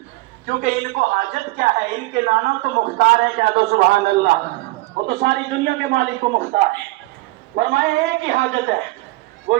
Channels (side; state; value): left; quieter; 21.0 dB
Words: کیونکہ ان کو حاجت کیا ہے؟ ان کے نانا تو مختار ہیں. کہہ دو سبحان اللہ. وہ تو ساری دنیا کے مالک کو مختار ہے. فرمایا ایک ہی حاجت ہے، وہ